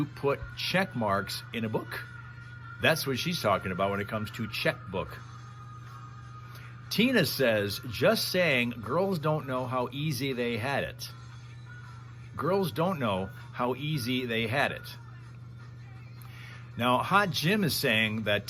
put check marks in a book. That's what she's talking about when it comes to checkbook. Tina says, just saying, girls don't know how easy they had it. Girls don't know how easy they had it. Now, Hot Jim is saying that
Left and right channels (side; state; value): both; identical; correlation 1.00